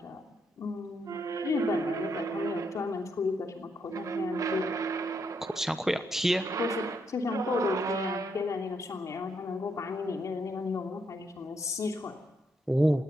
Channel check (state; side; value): normal; both; correlation 0.77